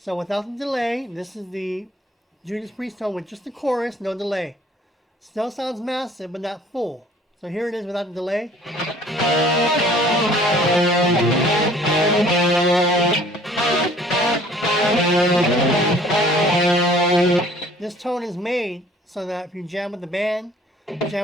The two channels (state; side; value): normal; both; correlation 0.54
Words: without the delay, this is the Judas Priest tone with just the chorus, no delay. Still sounds massive, but not full. So here it is without the delay. This tone is made so that if you jam with the band,